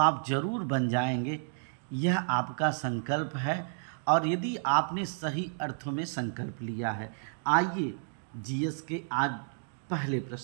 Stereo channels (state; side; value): silent; left; digital silence